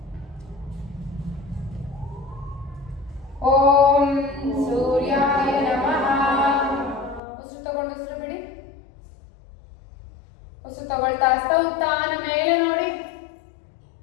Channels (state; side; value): drops out; right; at 7.2 s